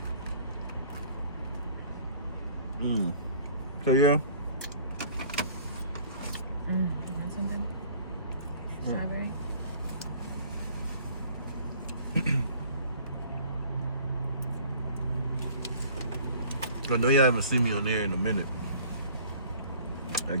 So yeah. You want something? Strawberry? I know y'all haven't seen me on there in a minute.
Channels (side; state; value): both; inverted; correlation -0.50